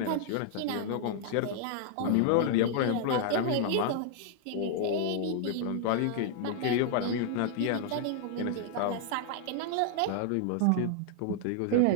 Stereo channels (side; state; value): both; different; correlation -0.01